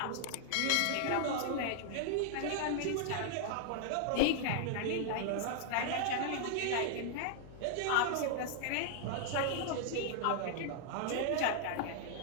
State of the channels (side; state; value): both; different; correlation 0.00